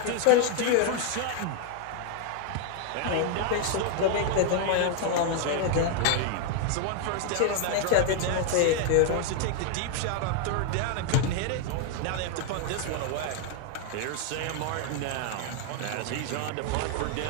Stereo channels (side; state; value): both; different; correlation 0.00